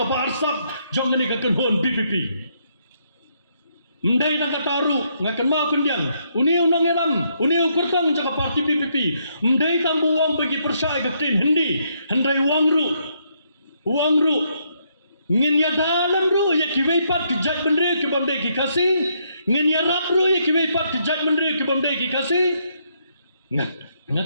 parsap jong ni ka kenhon BPP mendai na kataru ngakan ma kundiang uni unang elam uni ukurtang jaka parti BPP mendai tambu wang bagi persai ka tin hindi handai wang ru ngin ya dalam ru ya kiwei pat ki jat bendre ki bamde ki kasi ngin ya rap ru ya kiwei pat ki jat bendre ki bamde ki kasi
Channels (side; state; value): both; inverted; correlation -0.74